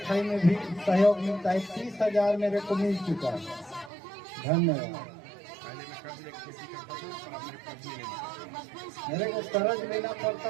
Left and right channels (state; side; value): drops out; left; at 3.9 s